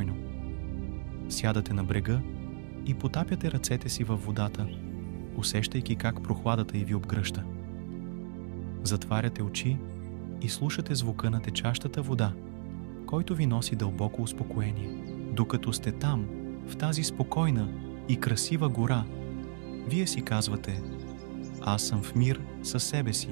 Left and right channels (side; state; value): left; silent; digital silence